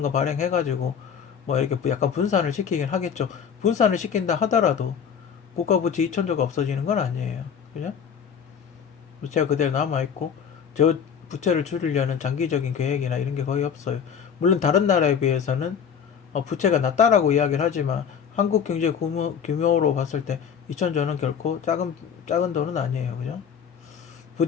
거 발행해가지고 뭐 이렇게 약간 분산을 시키긴 하겠죠. 분산을 시킨다 하더라도 국가 부채 2천조가 없어지는 건 아니에요. 그죠? 부채가 그대로 남아있고, 저 부채를 줄이려는 장기적인 계획이나 이런 게 거의 없어요. 물론 다른 나라에 비해서는 부채가 낮다라고 이야기를 하지만 한국 경제 규모로 봤을 때 2천조는 결코 작은 돈은 아니에요. 그죠?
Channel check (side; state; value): right; quieter; 7.4 dB